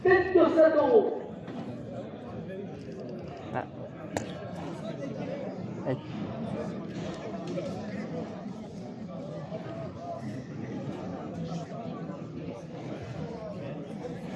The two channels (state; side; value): identical; both; correlation 1.00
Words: 27 euros. Ah. Allez.